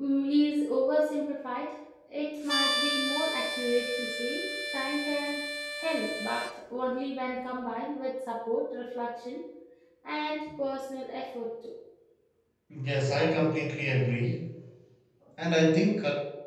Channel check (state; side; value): identical; both; correlation 1.00